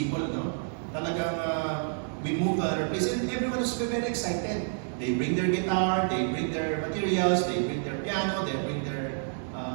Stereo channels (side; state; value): left; silent; digital silence